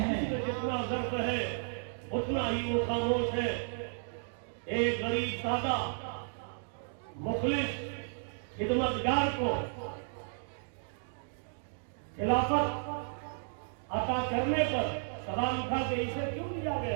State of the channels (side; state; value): left; silent; digital silence